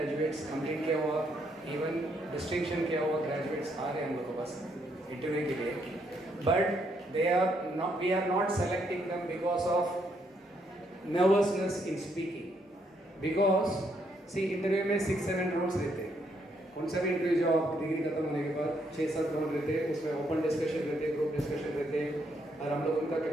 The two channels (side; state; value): both; normal; correlation 0.74